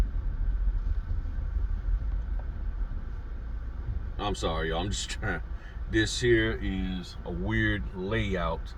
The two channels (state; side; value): identical; both; correlation 1.00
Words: I'm sorry, y'all. I'm just trying. This here is a weird layout.